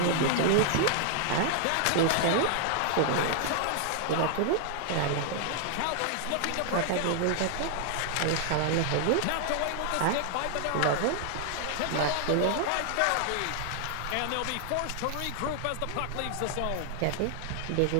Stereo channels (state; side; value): different; both; correlation 0.00